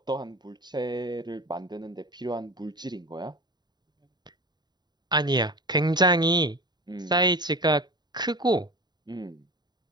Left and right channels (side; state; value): left; late; 0.20 ms